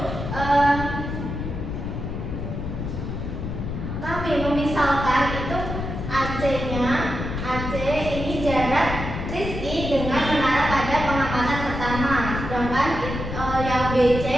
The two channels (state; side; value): noise; left; rumble, 5 dB below the sound